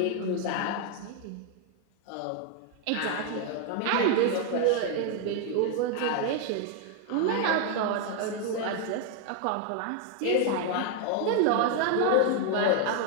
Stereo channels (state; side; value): different; both; correlation 0.00